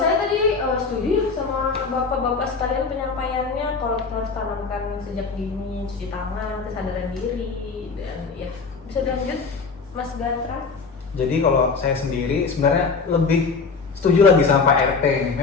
tadi setuju sama bapak-bapak sekalian penyampaiannya, kalau kita harus tanamkan sejak dini cuci tangan, kesadaran diri, dan ya bisa dilanjut Mas Gatra. Jadi kalau saya sendiri sebenarnya lebih setuju lagi sama Pak RT ini.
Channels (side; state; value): right; quieter; 4.7 dB